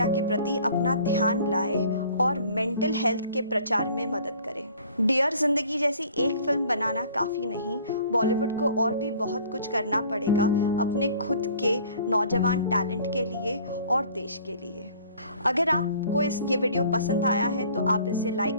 के प्रति अपना ध्यान लाए और मेंटल हेल्थ के प्रचार में मदद करें। डियर ज़िंदगी जैसी एक फिल्म बनाना काफ़ी नहीं, बॉलीवुड को और भी बहुत कुछ करना पड़ेगा अपने खुद के नौजवान टैलेंट के लिए और देश के लिए। अगर आपको ये वीडियो पसंद आया है तो आप इसे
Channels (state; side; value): inverted; both; correlation -0.52